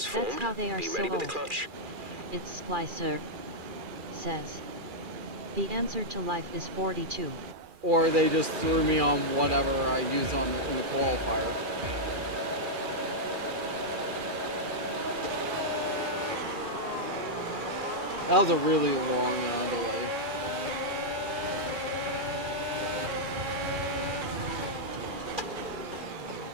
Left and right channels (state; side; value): late; left; 2.4 ms